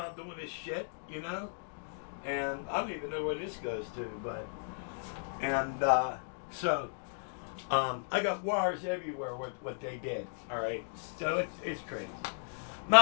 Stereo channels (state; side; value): silent; right; digital silence